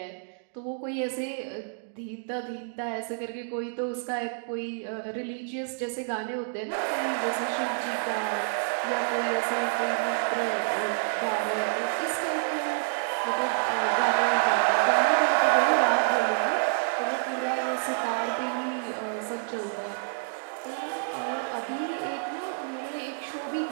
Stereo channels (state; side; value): silent; left; digital silence